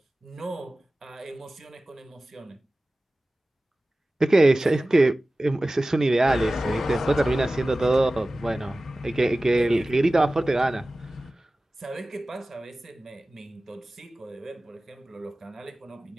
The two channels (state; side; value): normal; both; correlation 0.97